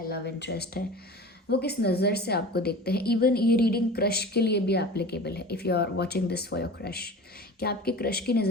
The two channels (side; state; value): both; normal; correlation 0.37